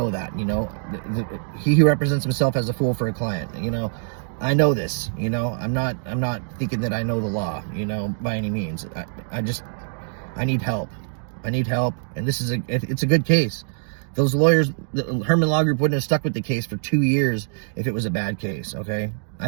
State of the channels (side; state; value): left; silent; digital silence